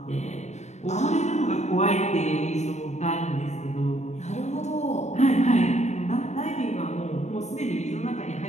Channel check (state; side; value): late; right; 0.33 ms